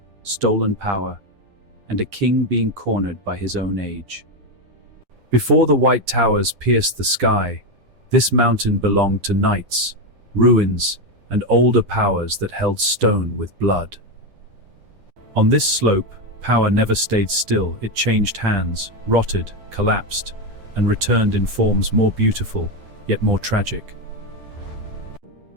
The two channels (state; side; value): late; left; 10 ms